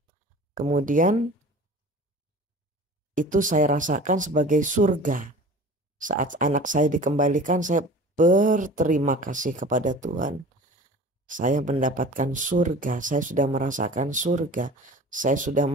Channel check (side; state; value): both; normal; correlation 0.41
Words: Kemudian itu saya rasakan sebagai surga. Saat anak saya dikembalikan, saya berterima kasih kepada Tuhan. Saya mendapatkan surga, saya sudah merasakan surga. Saya sudah